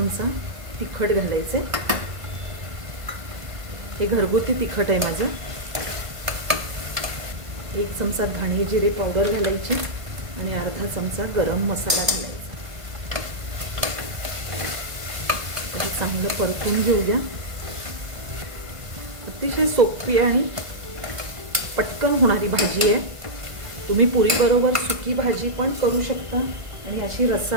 तिखट घालायचे. हे घरगुती तिखट आहे माझं. 1 चमचा धणे जिरे पावडर घालायची आणि अर्धा चमचा गरम मसाला घालायचा. चांगलं परतून घेऊया. अतिशय सोपी आणि पटकन होणारी भाजी आहे. तुम्ही पुरीबरोबर सुकी भाजी पण करू शकता आणि अशी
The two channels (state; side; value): late; left; 1.5 ms